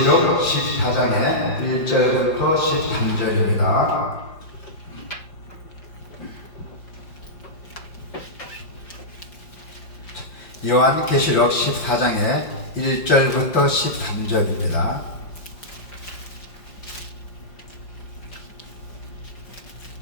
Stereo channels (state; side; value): late; right; 5.3 ms